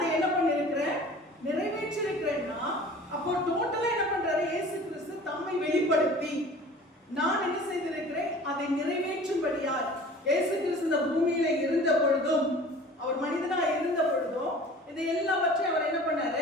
என்ன பண்ணிருக்கிறேன்? நிறைவேற்றிருக்கிறேன்னா அப்போ டோட்டலா என்ன பண்றாரு? இயேசு கிறிஸ்து தம்மை வெளிப்படுத்தி நான் என்ன செய்திருக்கிறேன்? அதை நிறைவேற்றும்படியாய் இயேசு கிறிஸ்து இந்த பூமியில இருந்த பொழுதும், அவர் மனிதனா இருந்த பொழுதும் இதை எல்லாவற்றையும் அவர் என்ன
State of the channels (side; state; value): both; normal; correlation 0.44